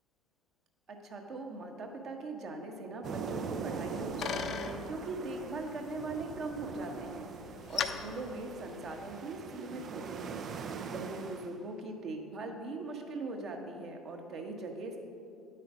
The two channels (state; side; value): normal; both; correlation 0.47